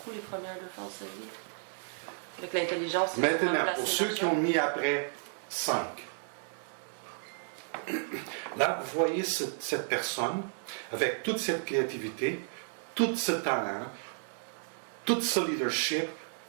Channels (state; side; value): silent; left; digital silence